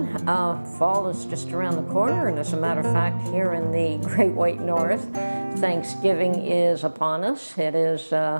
Fall is just around the corner, and as a matter of fact, here in the Great White North, Thanksgiving is upon us. It is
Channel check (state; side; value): inverted; both; correlation -1.00